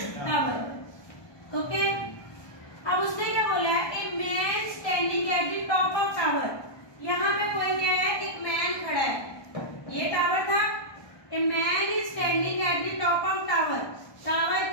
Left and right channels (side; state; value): right; late; 1.2 ms